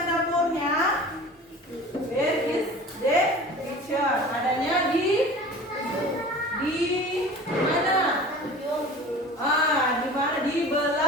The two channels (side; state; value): both; normal; correlation 0.40